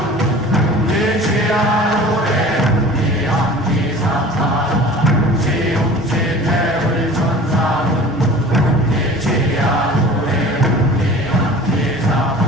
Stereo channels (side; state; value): both; normal; correlation 0.42